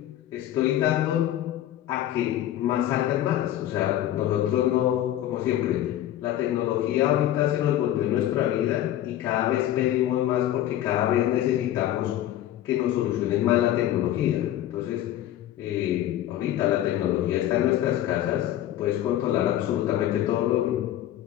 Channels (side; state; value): right; quieter; 12.8 dB